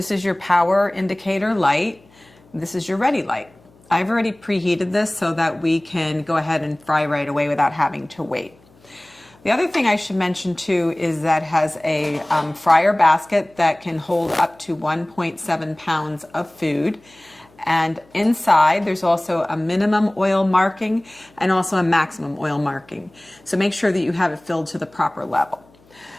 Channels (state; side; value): noise; left; hum, 30 dB below the sound